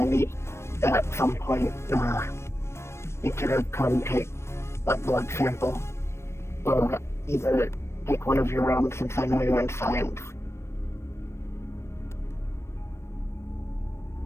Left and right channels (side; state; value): right; late; 0.13 ms